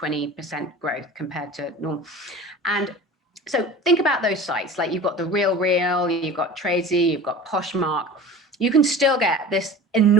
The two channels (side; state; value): both; normal; correlation 0.37